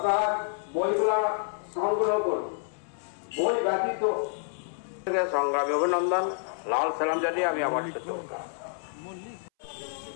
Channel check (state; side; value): silent; right; 59 dB below the other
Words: বইগুলা সংগ্রহ করুন। বই ব্যতীত সংগ্রামী অভিনন্দন, লাল সালাম জানিয়ে আমি আমার